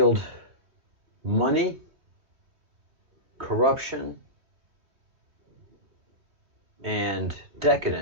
money, corruption, and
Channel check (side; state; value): left; late; 3.3 ms